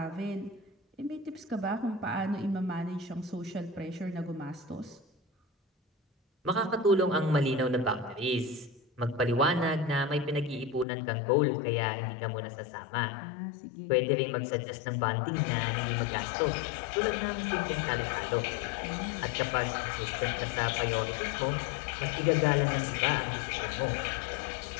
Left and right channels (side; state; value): right; drops out; at 10.9 s